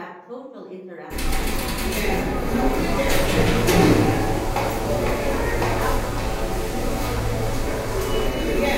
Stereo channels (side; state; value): both; identical; correlation 1.00